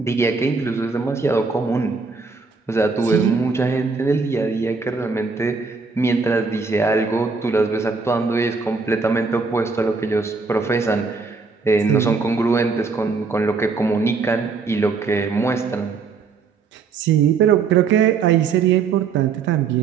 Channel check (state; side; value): quieter; left; 4.8 dB